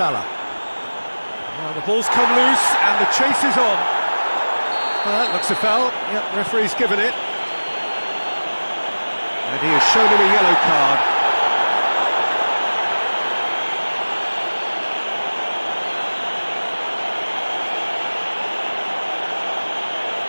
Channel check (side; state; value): both; inverted; correlation -1.00